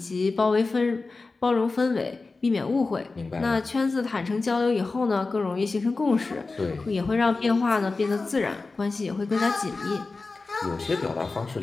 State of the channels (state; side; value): quieter; right; 3.7 dB